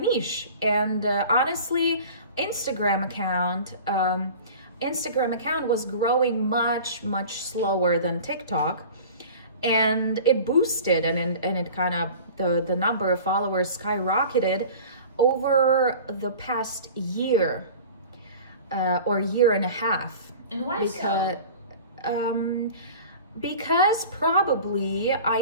And honestly, Instagram account was growing much slower than TikTok, and it boosted, and it kind of, the number of followers skyrocketed over the past year or year and a half. And why so? Because probably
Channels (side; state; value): both; inverted; correlation -0.40